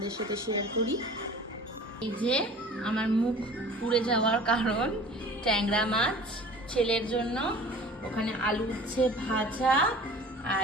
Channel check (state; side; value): normal; both; correlation 0.44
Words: সাথে শেয়ার করি। এই যে আমার মুখ পুড়ে যাওয়ার কারণ ট্যাংরা মাছ ছেলের জন্য, ওখানে আলু উচ্ছে ভাজা,